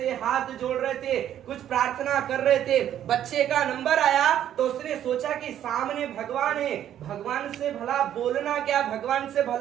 हाथ जोड़ रहे थे, कुछ प्रार्थना कर रहे थे। बच्चे का नंबर आया तो उसने सोचा कि सामने भगवान है, भगवान से भला बोलना क्या, भगवान से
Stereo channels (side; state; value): left; quieter; 10.8 dB